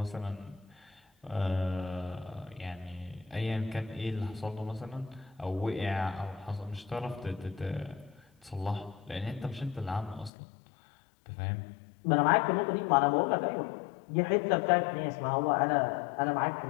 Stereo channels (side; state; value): right; drops out; at 10.3 s